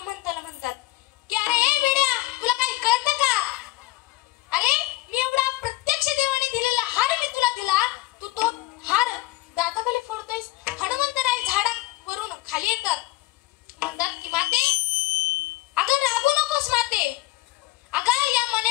म्हणतात की अरे ए वेड्या, तुला काही कळतं का? अरे मी एवढा प्रत्यक्ष देवाने दिलेला हार मी तुला दिला, तू तो हार दाताखाली फोडतोयस. हनुमंतराय झाडावरून खाली येतात, म्हणतात की माते, अगं रागू नकोस माते. अगं या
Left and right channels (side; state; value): right; quieter; 19.2 dB